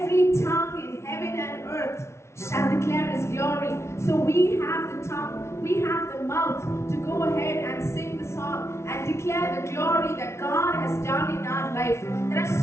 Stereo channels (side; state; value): right; late; 0.13 ms